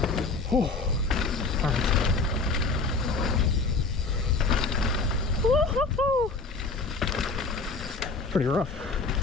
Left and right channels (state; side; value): quieter; right; 4.0 dB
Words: Oh. All right. Woo-hoo-hoo! Pretty rough.